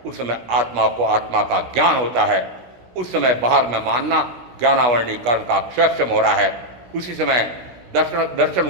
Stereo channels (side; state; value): left; late; 16 ms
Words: उस समय आत्मा को आत्मा का ज्ञान होता है। उस समय बाहर में मानना ज्ञानावरणी कर्म का क्षयक्षम हो रहा है। उसी समय